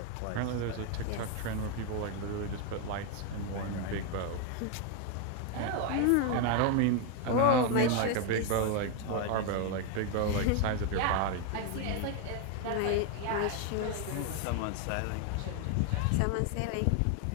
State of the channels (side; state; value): both; different; correlation 0.01